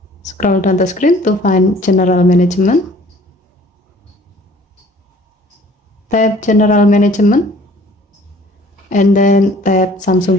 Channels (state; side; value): normal; both; correlation 0.53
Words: Scroll down the screen to find general management. Tap general management and then tap